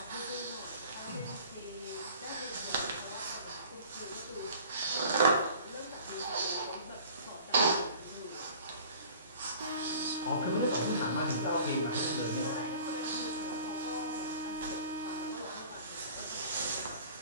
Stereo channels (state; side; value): inverted; both; correlation -0.46